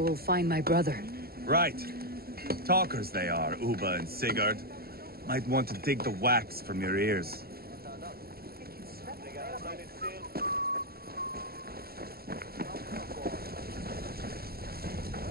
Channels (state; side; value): late; left; 0.45 ms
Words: we'll find my brother. Right. Talkers they are, Uba and Sigurd. Might want to dig the wax from your ears.